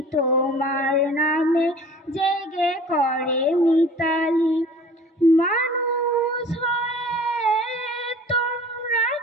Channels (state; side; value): normal; both; correlation 0.45